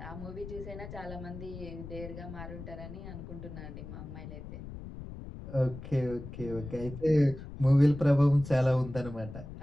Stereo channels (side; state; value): left; noise; rumble, 11 dB below the sound